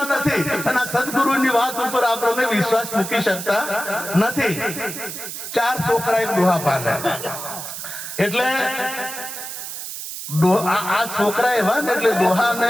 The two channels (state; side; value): noise; right; hiss, 8 dB below the sound